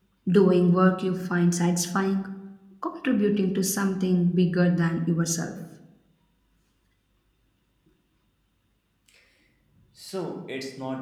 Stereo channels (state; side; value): identical; both; correlation 1.00